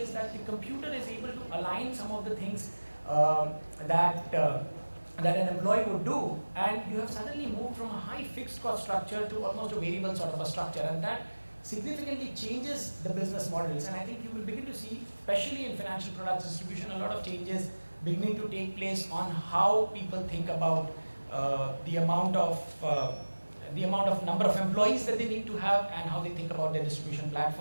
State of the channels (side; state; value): both; inverted; correlation -1.00